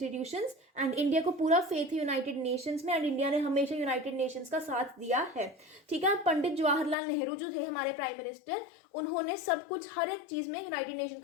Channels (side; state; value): right; drops out; at 7.0 s